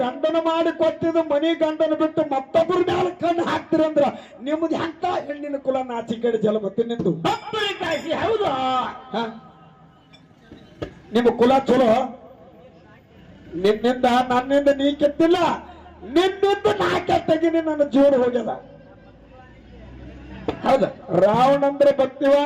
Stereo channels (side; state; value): both; identical; correlation 1.00